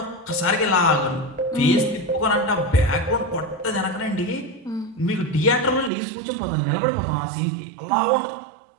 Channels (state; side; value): drops out; left; at 5.9 s